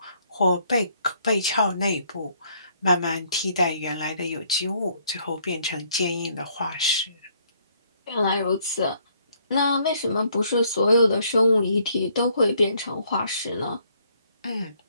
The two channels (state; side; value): inverted; both; correlation -0.67